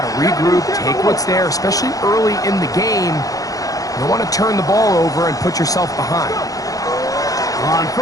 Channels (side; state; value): right; late; 0.17 ms